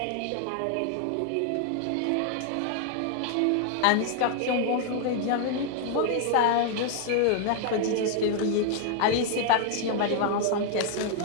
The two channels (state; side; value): different; both; correlation 0.00